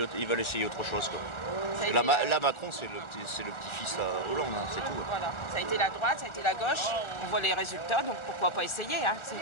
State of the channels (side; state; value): right; late; 1.4 ms